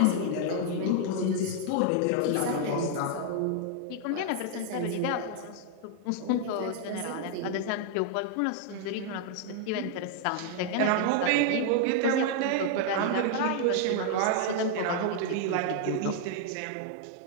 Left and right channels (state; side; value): different; both; correlation 0.00